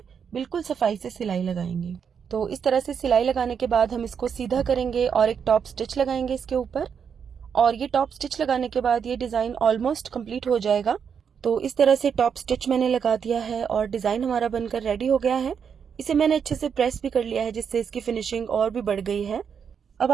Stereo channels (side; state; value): left; quieter; 7.0 dB